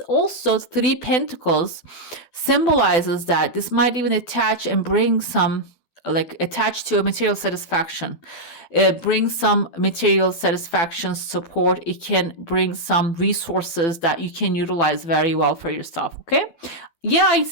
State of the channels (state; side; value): late; right; 12 ms